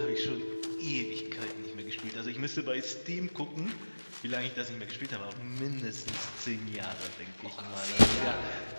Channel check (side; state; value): both; inverted; correlation -1.00